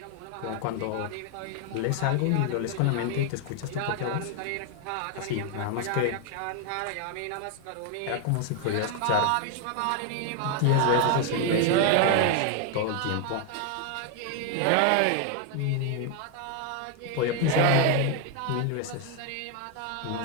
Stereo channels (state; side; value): different; both; correlation 0.01